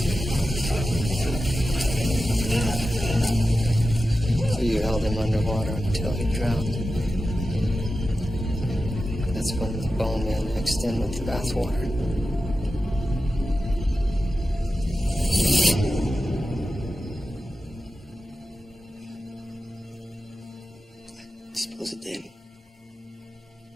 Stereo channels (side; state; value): both; normal; correlation 0.92